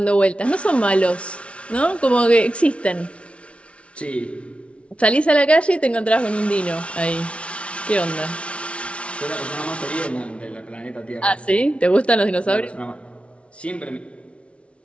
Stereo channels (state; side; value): late; right; 0.061 ms